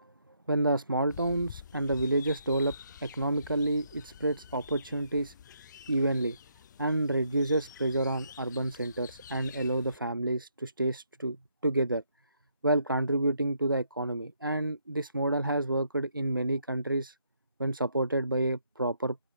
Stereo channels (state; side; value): inverted; both; correlation -0.74